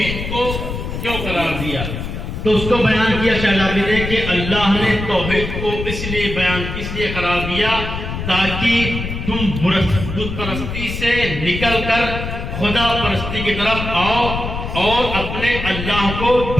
کو کیوں قرار دیا؟ تو اس کو بیان کیا شہزادی نے کہ اللہ نے توحید کو اس لیے قرار دیا تاکہ تم بت پرستی سے نکل کر خدا پرستی کی طرف آؤ اور اپنے اللہ کو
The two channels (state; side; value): noise; left; rumble, 6 dB below the sound